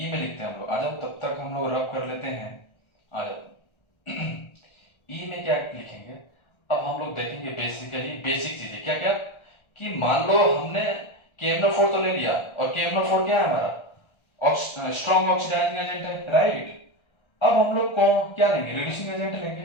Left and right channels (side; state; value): right; late; 1.3 ms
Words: में लिखते हैं हम लोग, आ जाओ, तब तक हम लोग रब कर लेते हैं, आ जाओ। ई में क्या लिखेंगे, अब हम लोग देखेंगे बेसिकली बेसिक चीजें क्या क्या, कि मान लो हमने KMnO4 तो ले लिया, और KMnO4 क्या है हमारा, स्ट्रॉन्ग ऑक्सीडाइजिंग एजेंट है राइट। अब हम लोग कौन क्या लेंगे, रिड्यूसिंग एजेंट